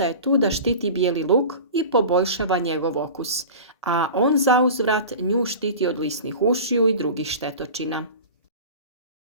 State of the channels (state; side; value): inverted; both; correlation -0.35